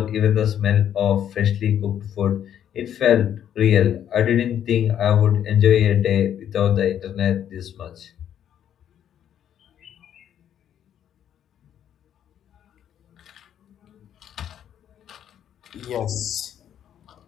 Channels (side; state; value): right; quieter; 9.9 dB